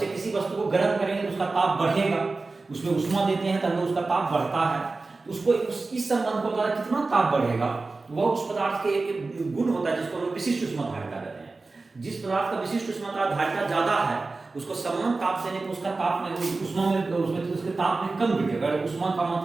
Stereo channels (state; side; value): quieter; left; 3.7 dB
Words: किसी वस्तु को गर्म करेंगे तो उसका ताप बढ़ेगा, उसमें उष्मा देते हैं तब उसका ताप बढ़ता है। उसको इस संबंध को द्वारा कितना ताप बढ़ेगा, वह उस पदार्थ के एक गुण होता है जिसको हम विशिष्ट उष्मा धारिता कहते हैं। जिस पदार्थ का विशिष्ट ऊष्मा का धारिता ज्यादा है उसको समान ताप देने पर उसका ताप में ऊष्मा में उसमें उसके ताप में कम वृद्धि। अगर ऊष्मा का